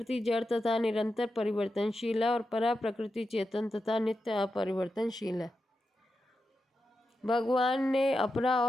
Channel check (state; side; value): normal; both; correlation 0.89